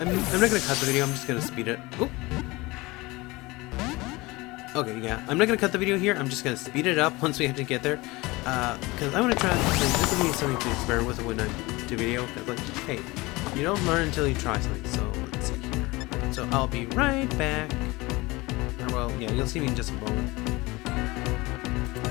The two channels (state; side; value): quieter; right; 22.3 dB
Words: not gonna cut the video, I'm just gonna speed it. Oop. Okay, yeah, I'm not gonna cut the video here, I'm just gonna speed it up once we have to get there. Because I wanna try, like, this will be something to experiment with when I do video, because, like, hey, you don't learn until you try something, so let's see here. Right, so I'll be right back. Or, well, yeah, you'll see me in just a moment.